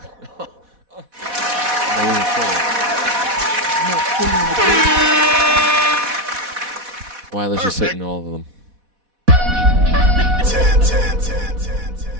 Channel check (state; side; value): late; left; 4.1 ms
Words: Weiler's just hitting all of them. 10.